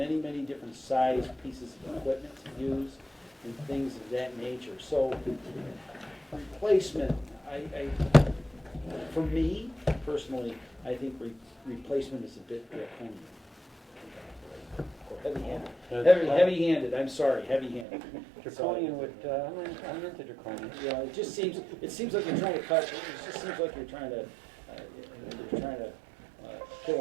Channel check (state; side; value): drops out; left; at 17.9 s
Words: many different size pieces of equipment to use and things of that nature. So replacement, for me personally, I think replacement is a bit draconian. Or heavy-handed. Heavy-handed, I'm sorry, heavy-handed. Draconian would, I'm into draconian. Yeah, it seems like you're trying to cut, it just seems like you're trying to